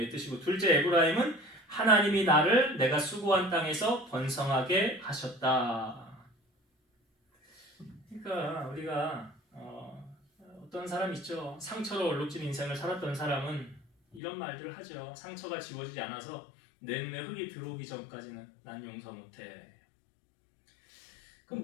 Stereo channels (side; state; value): right; drops out; at 14.2 s